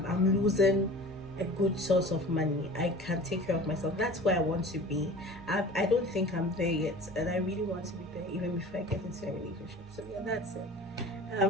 losing a good source of money. I can take care of myself. That's where I want to be. I don't think I'm there yet, and I really want to be there even before I get into a relationship. So yeah, that's it.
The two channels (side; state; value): both; normal; correlation 0.41